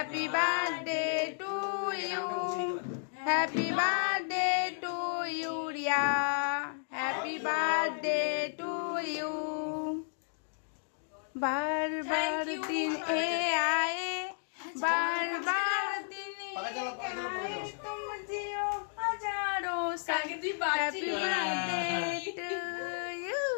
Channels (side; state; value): right; silent; digital silence